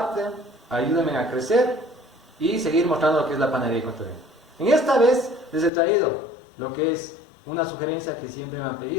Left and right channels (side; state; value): right; drops out; at 5.7 s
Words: ayúdenme a crecer y seguir mostrando lo que es la panadería ecuatoriana. En esta vez les he traído lo que es una sugerencia que siempre me han